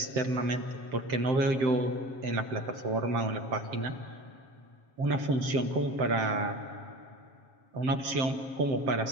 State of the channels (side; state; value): left; late; 7.8 ms